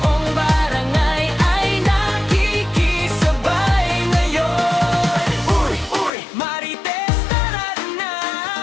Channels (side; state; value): right; drops out; at 6.1 s